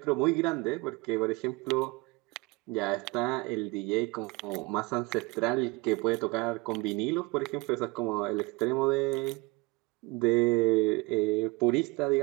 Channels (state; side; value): quieter; left; 24.9 dB